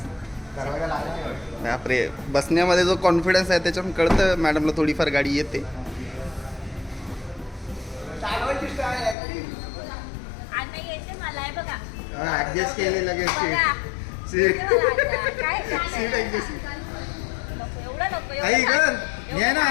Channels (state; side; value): drops out; right; at 9.2 s